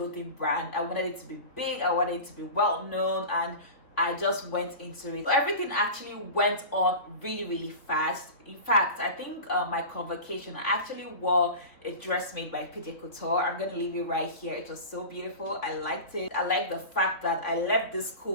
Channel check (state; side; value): late; right; 3.2 ms